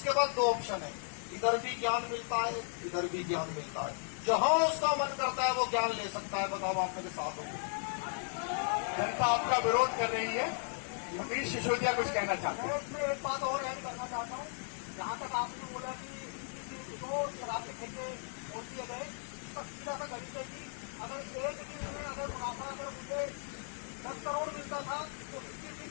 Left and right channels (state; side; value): silent; right; 54 dB below the other